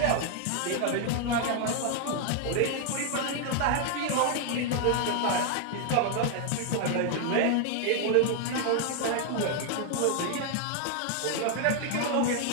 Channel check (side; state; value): both; different; correlation 0.00